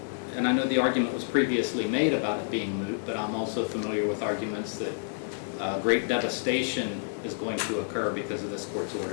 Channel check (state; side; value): silent; right; 58 dB below the other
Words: and I know the argument was previously made about it being moot, but I'm also familiar with arguments that great devastation is going to occur because of this court's